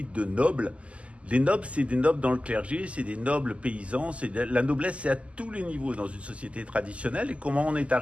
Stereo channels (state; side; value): late; left; 0.060 ms